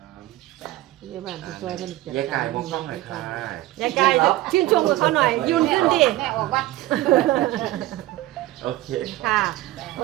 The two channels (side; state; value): left; quieter; 16.5 dB